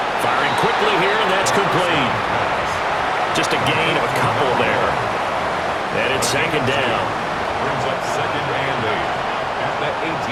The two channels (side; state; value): both; identical; correlation 1.00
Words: Firing quickly here, and that's complete. Just a gain of a couple there. And it's 2nd down. Brings up 2nd and 8. At